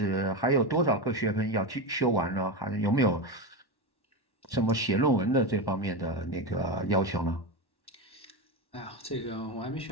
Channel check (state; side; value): late; right; 1.1 ms